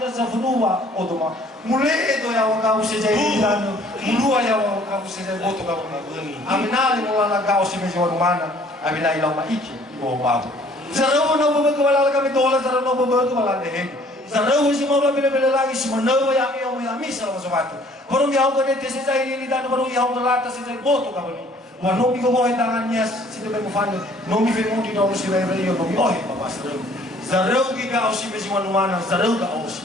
sa fonu wa odoma. Mule edo ya wakao si jai dilano. Mulua ya wakao si jai boto ka bani. Aminali mula nakao si pesi mana. Amina ilau maiki ibo babu. Zarawo no bobo wala kami dola zarawo no bobo wala dehe. Zarawo si moro bile lagi si manawo ya mi sa masawatu. Baru yaw ko dito si Zahiri Lidano, baru yaw ko lata si Zahiri Boto ka bali. Wa nomi ko mo tangan niya si Tebe mo fano. Nomi fe mo dito si Ray Ray nomi ohe papa Zaraw. Zaraw ki ka si Mesi Manumana, Zaraw ka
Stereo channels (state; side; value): normal; both; correlation 0.57